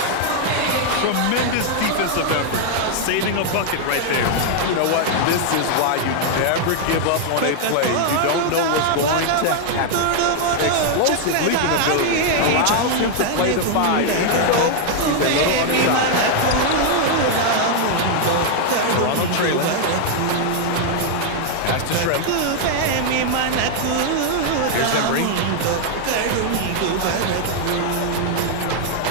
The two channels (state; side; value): different; both; correlation 0.00